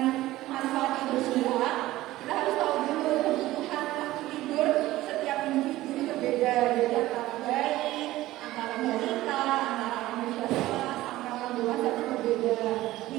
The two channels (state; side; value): quieter; left; 16.5 dB